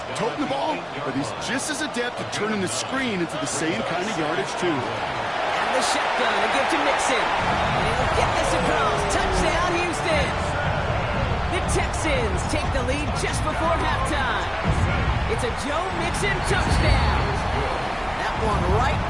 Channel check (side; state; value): both; identical; correlation 1.00